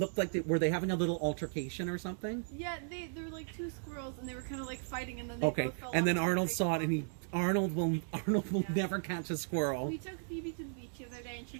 like were they having a little altercation or something? Yeah, they were like two squirrels, and they were kind of like fighting, and then they both fell and then off Arnold the saw it, and Arnold will Yeah. never catch a squirrel. We took Phoebe to the beach the other day, and she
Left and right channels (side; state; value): left; silent; digital silence